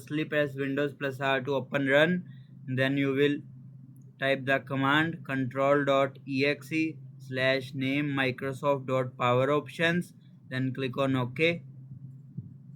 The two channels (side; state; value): both; identical; correlation 1.00